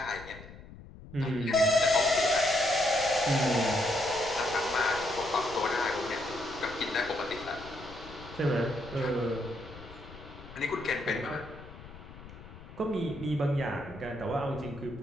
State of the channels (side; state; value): left; noise; rumble, 16 dB below the sound